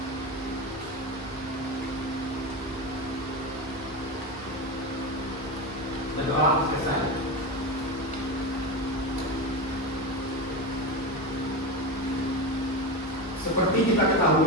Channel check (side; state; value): both; normal; correlation 0.20